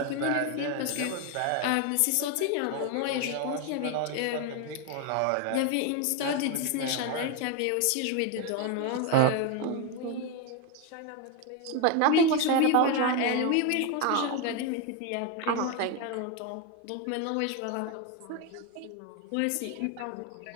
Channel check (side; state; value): both; different; correlation 0.02